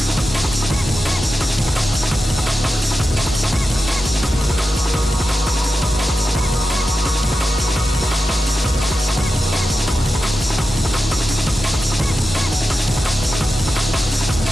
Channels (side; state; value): both; normal; correlation 0.91